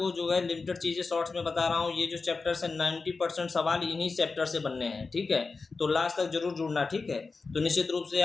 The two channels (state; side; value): quieter; right; 4.2 dB